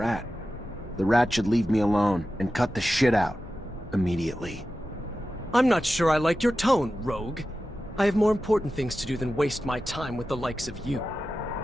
The rat should leave me alone and cut the shit out. Immediately. I'm not sure I like your tone, Rogue. I have more important things to do than waste my time with the likes of you.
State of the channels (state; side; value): normal; both; correlation 0.93